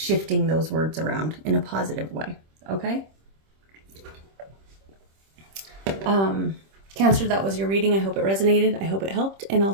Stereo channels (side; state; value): left; late; 26 ms